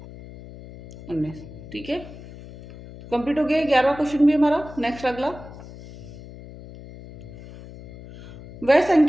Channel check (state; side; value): noise; left; hum, 16 dB below the sound